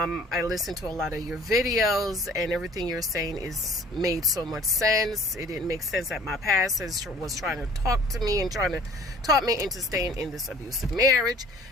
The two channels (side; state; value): both; normal; correlation 0.51